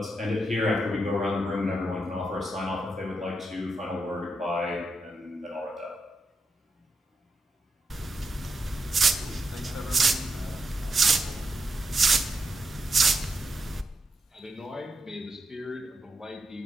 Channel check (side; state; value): both; normal; correlation 0.84